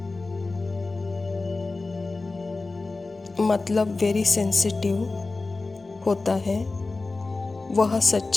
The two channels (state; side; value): quieter; right; 3.5 dB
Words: मतलब वेरी सेंसिटिव होता है। वह